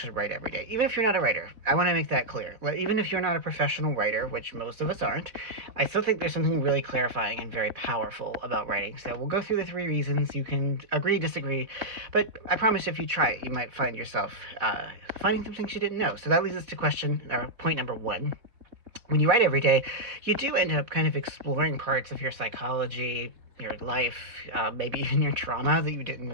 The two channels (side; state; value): left; late; 4.1 ms